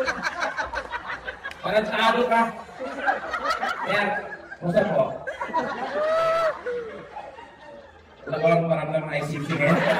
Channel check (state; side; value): identical; both; correlation 1.00